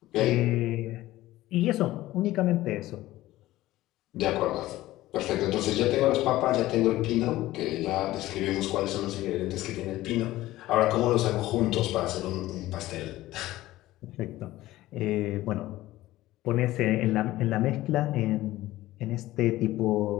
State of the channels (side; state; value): right; quieter; 16.4 dB